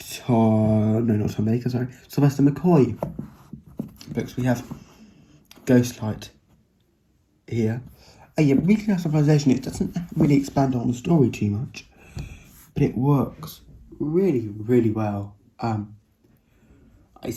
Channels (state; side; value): identical; both; correlation 1.00